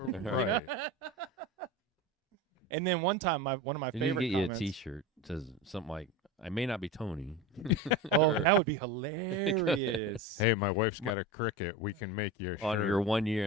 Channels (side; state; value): both; normal; correlation 0.26